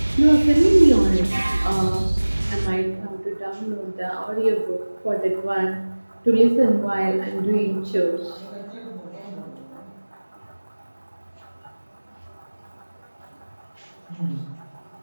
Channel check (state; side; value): inverted; both; correlation -1.00